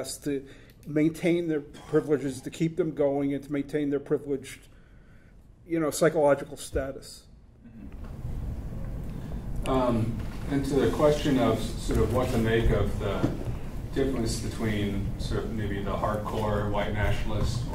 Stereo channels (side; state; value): both; identical; correlation 1.00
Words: to maintain their privileges, to keep them going, and to maintain their privileged, psychological status. And to the question of sort of what to make of the difference between sort of maybe the hardcore white nationalist,